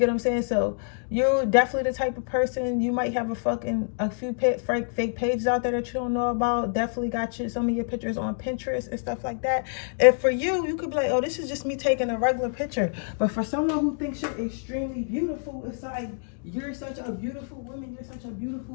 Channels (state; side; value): silent; right; digital silence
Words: what I'm saying? So you're definitely the type of person, you might have a few fake pages out there that you don't know about. Definitely got some of your pictures on Pinterest and stuff like that. And for you, you could be like, oh, this is just me taking a regular picture. But for someone who thinks you're extremely beautiful, it's like, you're such a beautiful woman, you're such a